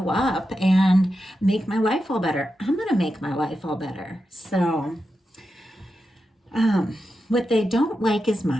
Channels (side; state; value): both; normal; correlation 0.89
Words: up and make my life all better. I'm going to make my life all better. So, what they don't like as